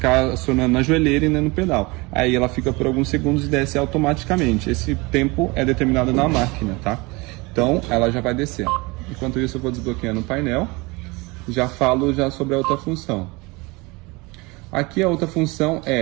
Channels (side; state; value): left; quieter; 25.1 dB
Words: acionando na joelheira e nem no pedal. Aí ela fica por alguns segundos e desce automaticamente. Esse tempo é determinado na máquina, tá? Então ela já vai descer. Enquanto isso eu vou desbloqueando o painel. Já falo sobre a outra função. Aqui a outra função